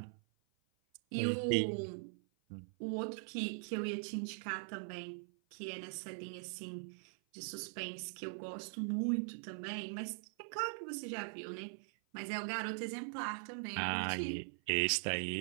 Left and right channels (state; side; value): silent; left; 50 dB below the other